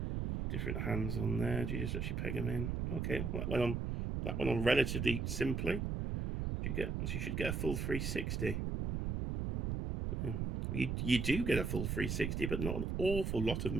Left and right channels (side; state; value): right; noise; rumble, 1 dB below the sound